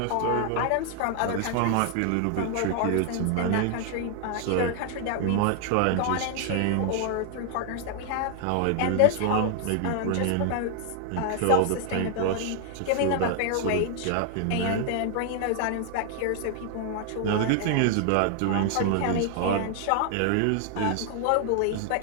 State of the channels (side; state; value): both; different; correlation 0.00